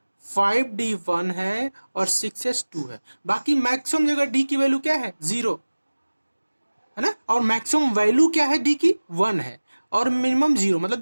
5d1 है और 6s2 है। बाकी मैक्सिमम जगह d की वैल्यू क्या है 0 है ना, और मैक्सिमम वैल्यू क्या है d की 1 है, और मिनिमम 0,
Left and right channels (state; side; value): inverted; both; correlation -1.00